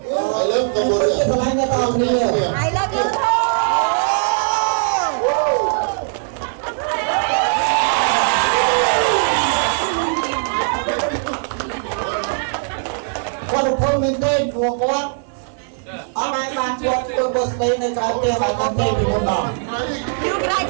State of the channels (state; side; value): silent; left; 66 dB below the other